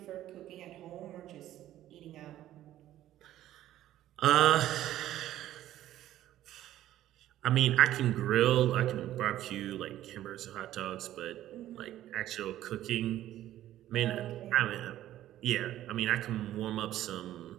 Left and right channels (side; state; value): left; quieter; 13.3 dB